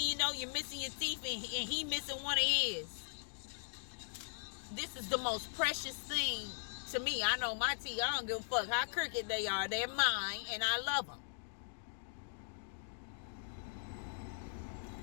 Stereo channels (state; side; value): silent; right; digital silence